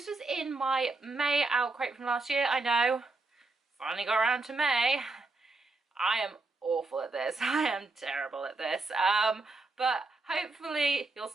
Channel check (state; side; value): quieter; left; 3.4 dB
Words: was in my May OwlCrate from last year. I know, finally got around to May. I am awful at this. I am terrible at this. But hopefully you'll